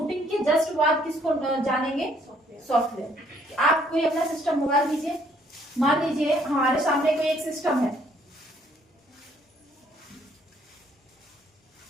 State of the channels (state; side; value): normal; both; correlation 0.65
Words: के जस्ट बाद किसको जानेंगे? सॉफ्टवेयर। आप कोई अपना सिस्टम मोबाइल लीजिए, मान लीजिए हमारे सामने कोई एक सिस्टम है,